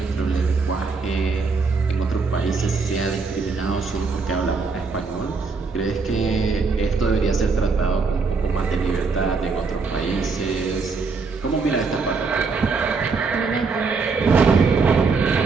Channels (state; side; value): quieter; left; 4.5 dB